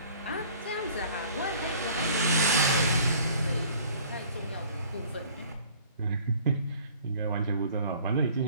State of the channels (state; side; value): inverted; both; correlation -0.52